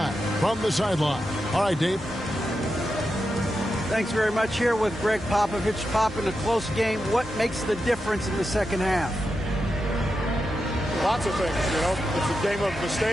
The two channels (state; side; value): normal; both; correlation 0.88